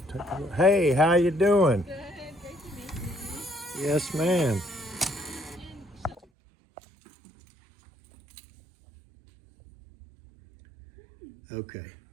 Hey, how you doing? Good, great to meet you. Yes, ma'am. Okay.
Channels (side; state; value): left; drops out; at 6.2 s